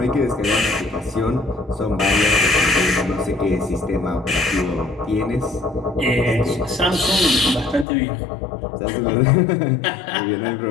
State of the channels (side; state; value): right; drops out; at 7.9 s